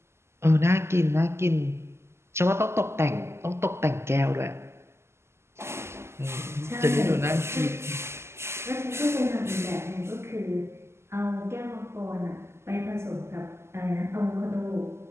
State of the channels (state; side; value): late; left; 0.13 ms